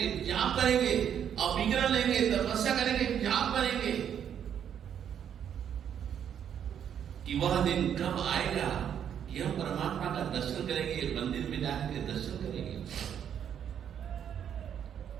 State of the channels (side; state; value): left; quieter; 8.9 dB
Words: जाप करेंगे, अविग्रह लेंगे, तपस्या करेंगे, जाप करेंगे, कि वह दिन कब आएगा कि हम परमात्मा का दर्शन करेंगे, मंदिर में जाकर दर्शन करेंगे।